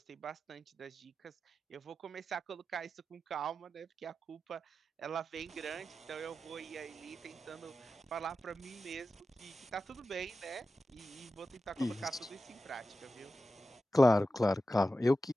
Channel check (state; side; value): normal; both; correlation 0.92